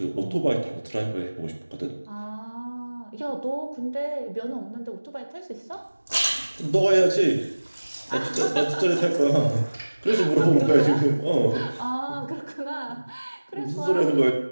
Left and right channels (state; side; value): inverted; both; correlation -1.00